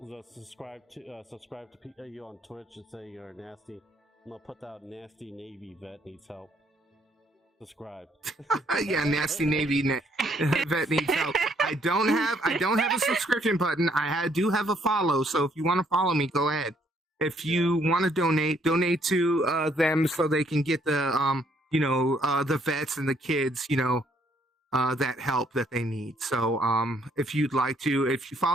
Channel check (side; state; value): both; normal; correlation 0.68